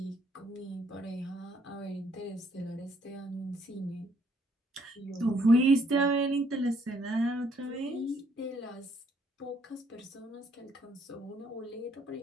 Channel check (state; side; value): normal; both; correlation 0.67